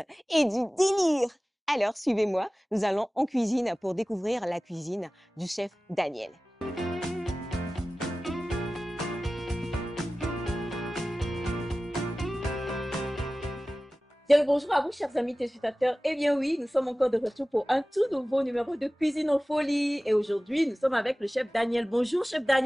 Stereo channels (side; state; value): both; normal; correlation 0.97